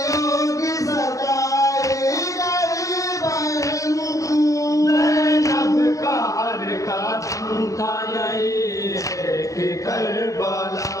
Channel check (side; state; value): right; late; 0.16 ms